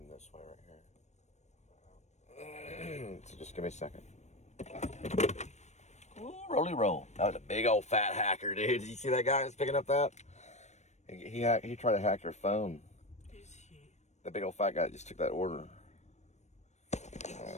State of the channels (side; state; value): right; late; 0.33 ms